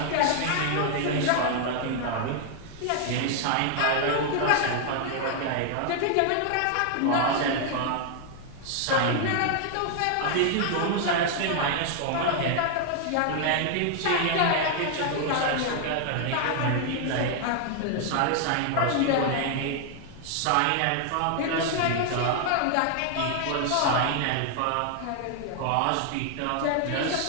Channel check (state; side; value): different; both; correlation 0.00